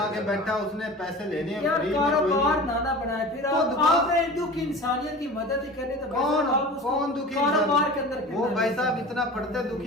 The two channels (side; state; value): both; normal; correlation 0.36